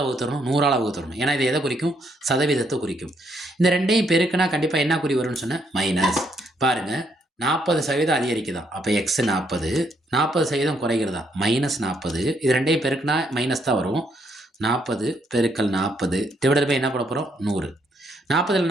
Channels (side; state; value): both; normal; correlation 0.73